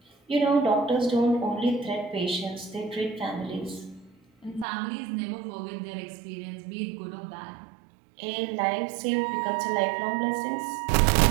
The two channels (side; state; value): left; drops out; at 4.7 s